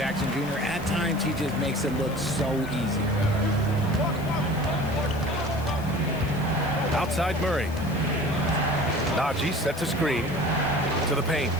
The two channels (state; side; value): noise; left; hiss, 20 dB below the sound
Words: Jr., at times, he just makes it look so easy. Outside Murray. Najee sets a screen to the paint.